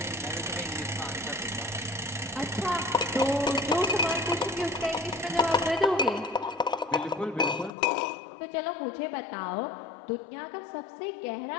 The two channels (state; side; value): drops out; right; at 7.8 s